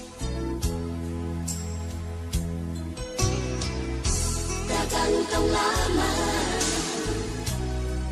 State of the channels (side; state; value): both; identical; correlation 1.00